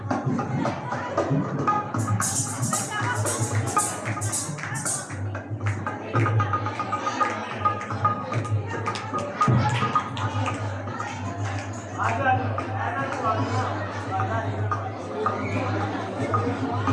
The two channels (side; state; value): both; identical; correlation 1.00